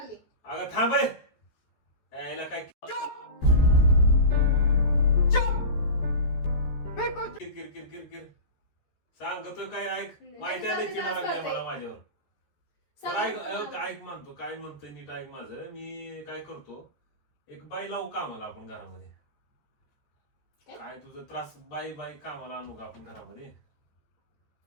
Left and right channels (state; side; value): late; right; 14 ms